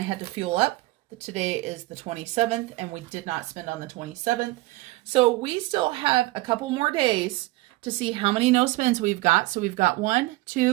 had to fuel up. Today is the 27th, and we did not spend on the 27th. So we still have a couple more days to see how many no spends we've got. So we've got 1,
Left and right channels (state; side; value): quieter; left; 20.1 dB